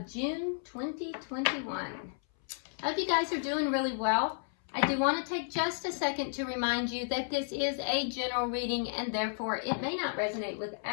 June 2021. I hope you guys are doing really well. I do want to take just a second to remind you that this is a general reading and therefore it may not resonate with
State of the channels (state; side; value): silent; right; 56 dB below the other